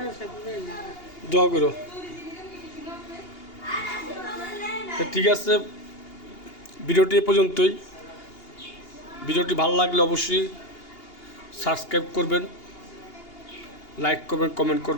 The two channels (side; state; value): right; late; 2.8 ms